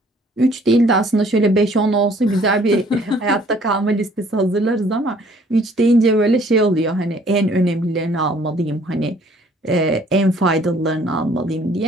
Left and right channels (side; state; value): both; normal; correlation 0.59